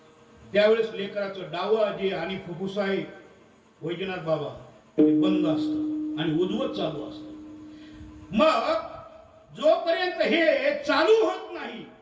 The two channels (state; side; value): identical; both; correlation 1.00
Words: त्यावेळेस लेकराचं डावं जे आणि फुफ्फुस आहे वैजनाथ बाबा ते बंद असतं आणि उद्वत चालू असतं. मग जोपर्यंत हे चालू होत नाही